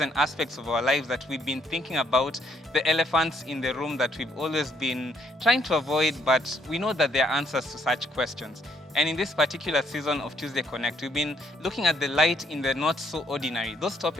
aspects of our lives that we've been thinking about, the elephants in the room that we've always been trying to avoid, but we know that there are answers to such questions. And in this particular season of Tuesday Connect, we've been looking at the light in the not so ordinary, those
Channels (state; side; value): normal; both; correlation 0.69